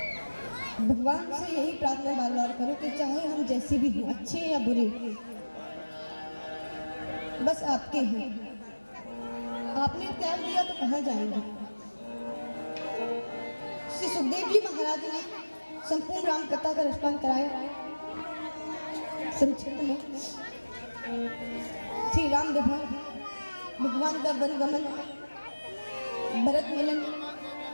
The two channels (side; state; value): both; inverted; correlation -1.00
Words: भगवान से यही प्रार्थना बार बार करो कि चाहे हम जैसे भी हों, अच्छे या बुरे, बस आपके हैं। आपने त्याग दिया तो कहाँ जाएंगे? श्री सुखदेव जी महाराज ने संपूर्ण राम कथा का रसपान कराया। संक्षिप्त में श्री राम विवाह, भगवान का वन गमन, भरत मिलन,